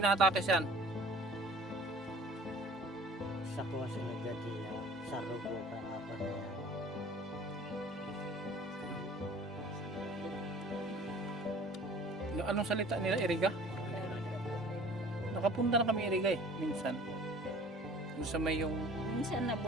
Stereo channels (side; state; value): both; normal; correlation 0.48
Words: siyan? Sa kuha sila dati sa rubo ka apa na. Anong salita nila, Iriga? Nakapunta na kami Iriga eh, minsan. Kung sa may yung... minsan